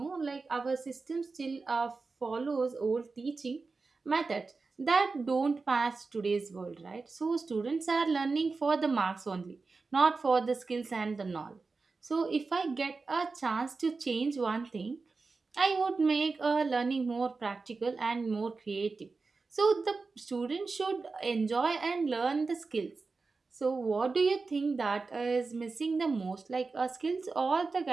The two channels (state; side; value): quieter; left; 4.1 dB